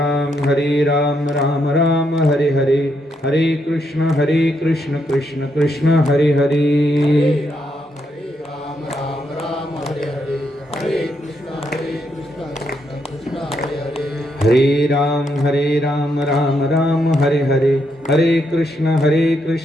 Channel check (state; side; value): normal; both; correlation 0.78